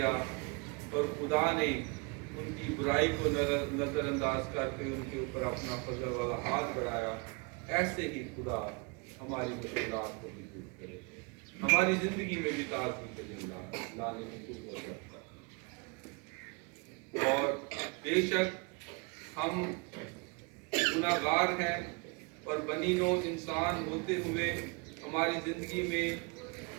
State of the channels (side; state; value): left; quieter; 31.2 dB